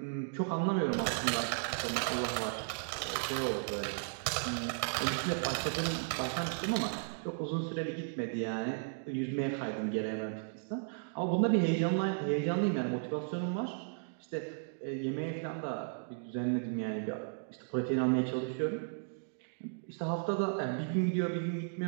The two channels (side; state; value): left; silent; digital silence